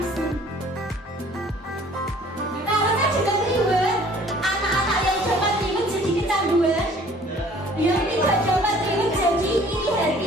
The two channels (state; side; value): normal; both; correlation 0.53